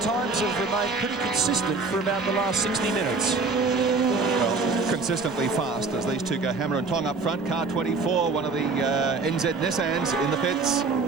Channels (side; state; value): left; quieter; 4.1 dB